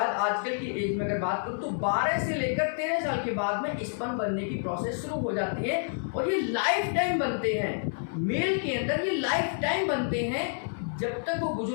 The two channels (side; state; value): right; silent; digital silence